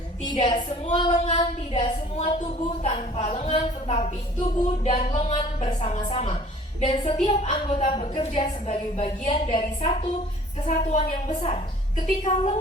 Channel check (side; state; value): both; normal; correlation 0.51